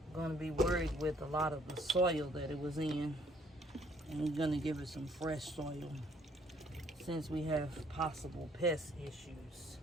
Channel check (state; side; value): normal; both; correlation 0.62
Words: going to be worried with a lot of the soil that it was in. And we're going to give it some fresh soil since we have possible pest issues.